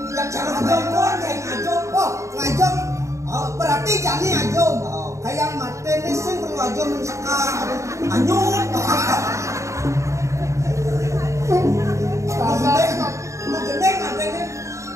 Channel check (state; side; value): late; left; 0.14 ms